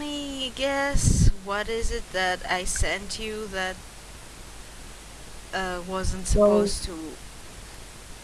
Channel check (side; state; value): both; identical; correlation 1.00